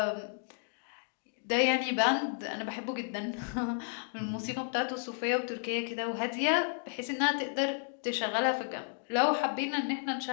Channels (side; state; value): right; silent; 56 dB below the other